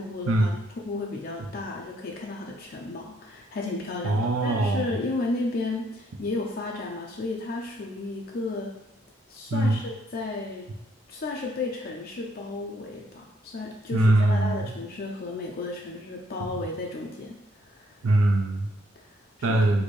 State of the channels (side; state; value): both; normal; correlation 0.70